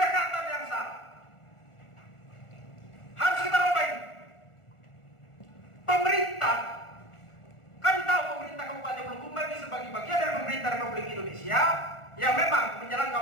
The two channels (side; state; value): right; late; 1.4 ms